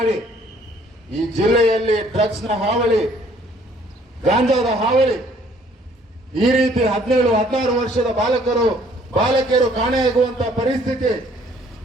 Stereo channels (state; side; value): normal; both; correlation 0.60